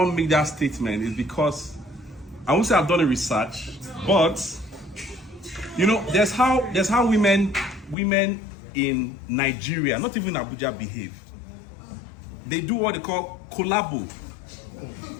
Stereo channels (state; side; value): drops out; right; at 8.0 s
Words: make that statement? Is because I won't say I've done a research, but you know, there's how women in Nigeria, not even Abuja, behave. They do what they call collabo.